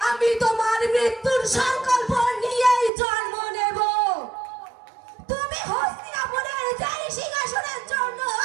আমি তোমার মৃত্যুর সংকল্প নিয়েই জন্ম নেব। তুমি হস্তিনাপুরের যেই সিংহাসনের জন্য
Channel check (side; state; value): left; drops out; at 2.9 s